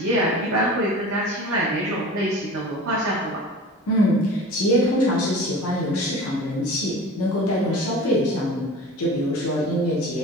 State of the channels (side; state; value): both; normal; correlation 0.38